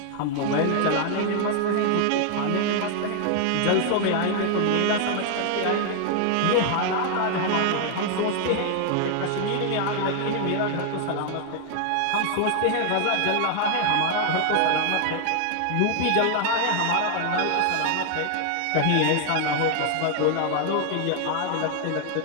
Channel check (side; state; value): both; different; correlation 0.00